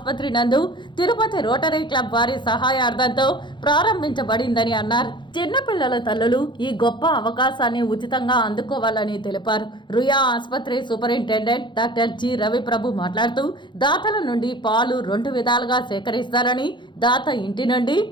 నందు తిరుపతి రోటరీ క్లబ్ వారి సహాయార్థంతో ప్రారంభించబడిందని అన్నారు. చిన్నపిల్లల తల్లులు ఈ గొప్ప అవకాశాన్ని ఉచితంగా అందుకోవాలని తెలిపారు. రుయా ఆసుపత్రి సూపరింటెండెంట్ డాక్టర్ జి రవిప్రభు మాట్లాడుతూ దాతల నుండి పాలు 2 విధాలుగా సేకరిస్తారని, దాత ఇంటి నుండి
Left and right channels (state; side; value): late; right; 0.23 ms